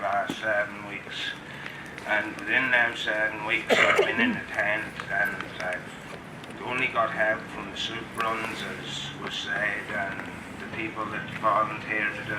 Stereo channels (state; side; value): identical; both; correlation 1.00